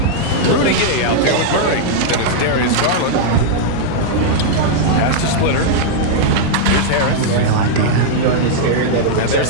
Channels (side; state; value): both; different; correlation -0.02